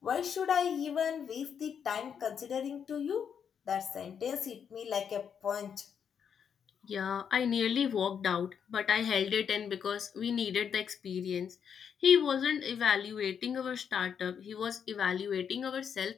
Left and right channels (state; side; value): quieter; right; 7.5 dB